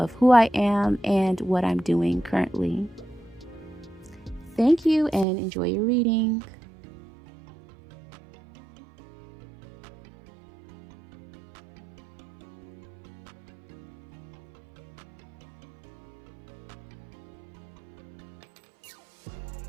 who I am and what I'm doing currently. Thank you and enjoy your reading.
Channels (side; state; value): left; drops out; at 5.2 s